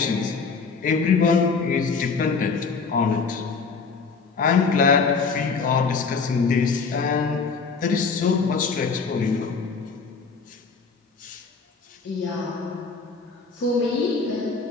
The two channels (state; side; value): quieter; right; 4.9 dB